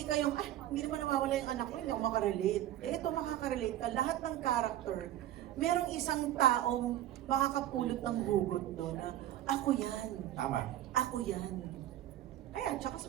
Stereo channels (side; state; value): left; quieter; 13.1 dB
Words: kayong, hindi naman nawawala yung anak ko, hindi ako makarelate. Ito makaka-relate ka. Lahat ng character, merong isang taong makakapulot ng hugot doon na, ako yan. tama. Ako yan. Ayan, tsaka sa